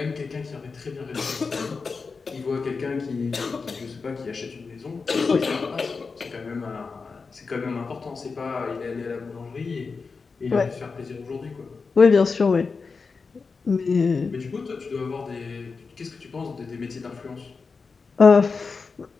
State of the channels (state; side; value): quieter; right; 4.7 dB